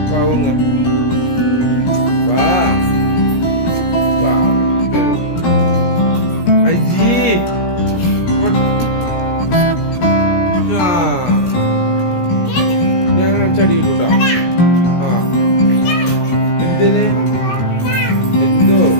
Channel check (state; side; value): late; right; 17 ms